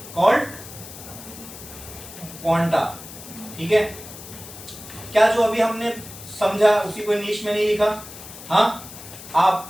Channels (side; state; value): left; noise; hiss, 15 dB below the sound